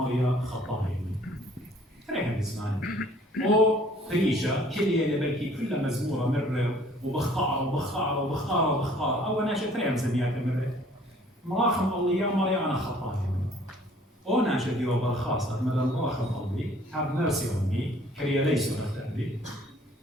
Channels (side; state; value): both; normal; correlation 0.56